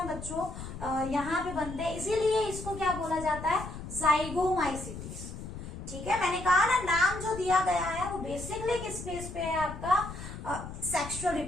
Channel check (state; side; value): noise; left; rumble, 10 dB below the sound